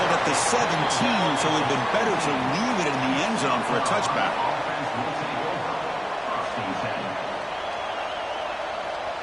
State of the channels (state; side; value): identical; both; correlation 1.00